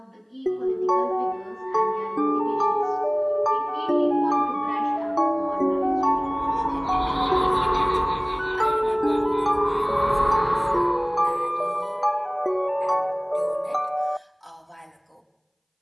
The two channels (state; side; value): identical; both; correlation 1.00